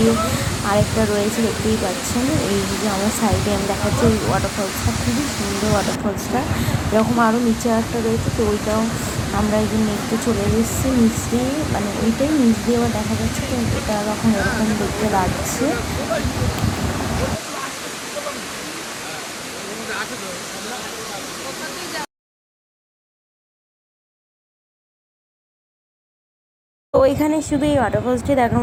আরেকটা রয়েছে, দেখতেই পাচ্ছেন। এই যে আমার সাইডে আমি দেখাচ্ছি ওই ওয়াটারফলসটা খুবই সুন্দর। ওয়াটারফলসটা এরকম আরও নিচে একটা রয়েছে, তো ওইটাও আমরা এই যে দেখতে চলে এসেছি নিচ দিয়ে, মানে ওইটাই নিচ দিয়ে আবার দেখা যাচ্ছে। তো এটা এখন এরকম দেখতে লাগছে। তো এখানে শুধু এই ওয়াটারফলসটি দেখার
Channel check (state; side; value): identical; both; correlation 1.00